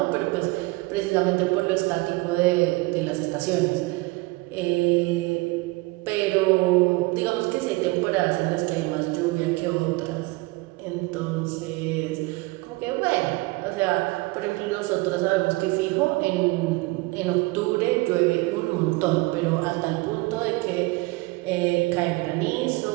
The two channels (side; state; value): left; quieter; 23.3 dB